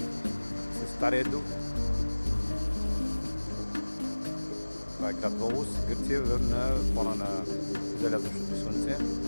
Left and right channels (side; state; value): both; inverted; correlation -1.00